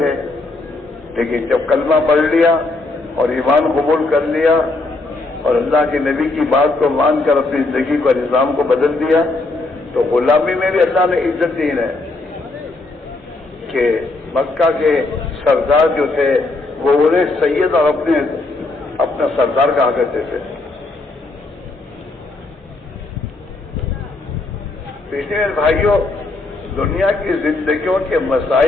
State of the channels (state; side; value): quieter; right; 3.2 dB